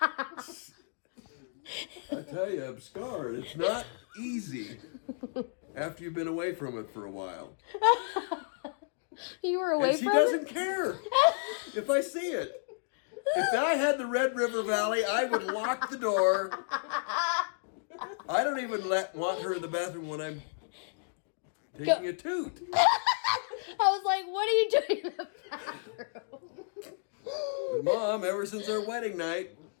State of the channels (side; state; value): right; silent; digital silence